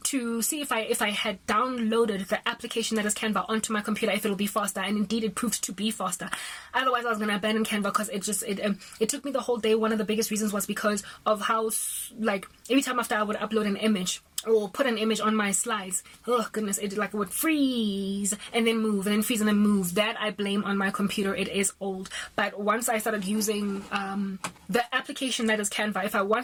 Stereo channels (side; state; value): both; identical; correlation 1.00